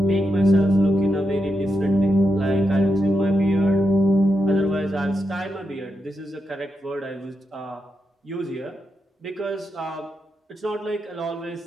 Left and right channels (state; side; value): normal; both; correlation 0.86